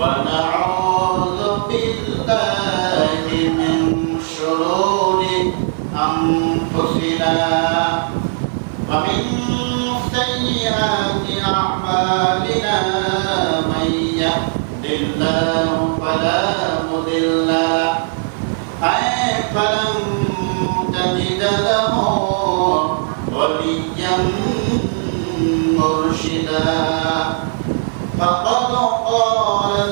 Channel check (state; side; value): silent; left; 59 dB below the other